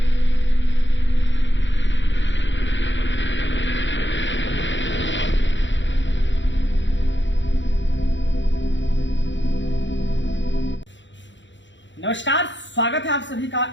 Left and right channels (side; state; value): right; late; 0.54 ms